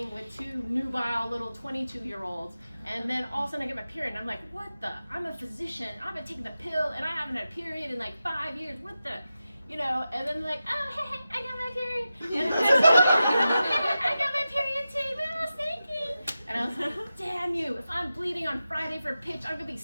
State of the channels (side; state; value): both; inverted; correlation -0.92